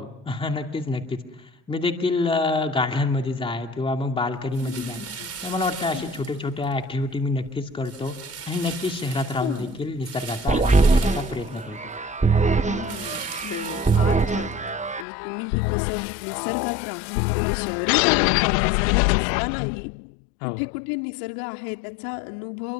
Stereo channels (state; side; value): drops out; right; at 15.1 s